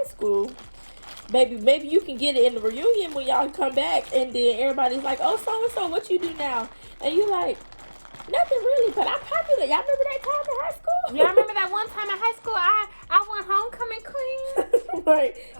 school, maybe you can get it in the reunion when y'all come back, and then everybody's like, oh, so what you do now? And you like, nothing really, but I'm popular. Y'all remember that time in high school? Yeah, I remember that one time in high school. I won homecoming queen. Right.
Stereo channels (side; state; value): both; inverted; correlation -1.00